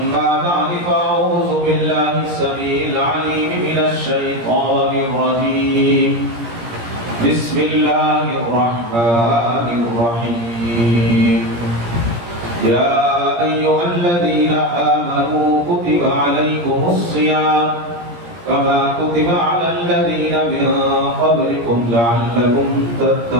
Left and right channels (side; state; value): left; late; 17 ms